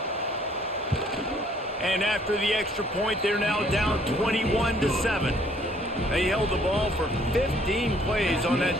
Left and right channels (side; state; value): both; normal; correlation 0.62